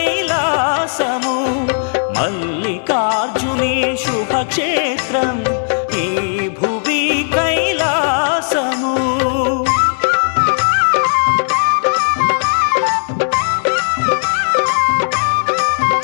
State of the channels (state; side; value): silent; right; digital silence